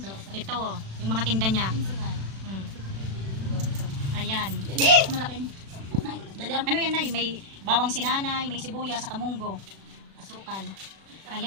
Ito, yung mga tinda niya. Ayan. Malaking. Ano yan nay? May bawang si nanay, may sibuyas, sa kamunggo. Asukal.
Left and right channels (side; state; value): left; late; 36 ms